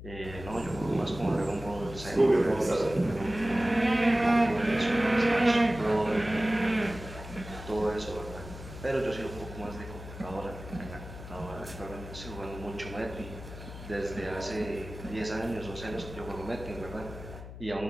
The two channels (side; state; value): left; noise; hum, 12 dB below the sound